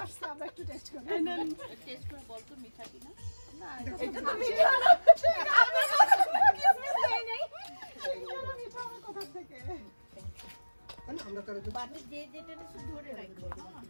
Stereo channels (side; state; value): both; inverted; correlation -1.00